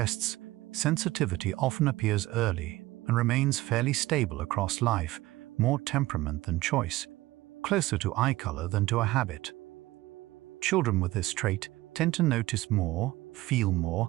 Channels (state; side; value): quieter; left; 18.2 dB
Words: sensitivity often appears early and remains fairly stable across life, more temperament than choice, closer to eye color than to a habit. Children with this trait tend to notice more, feel more,